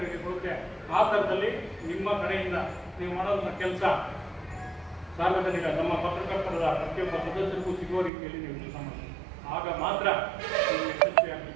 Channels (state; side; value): drops out; left; at 8.1 s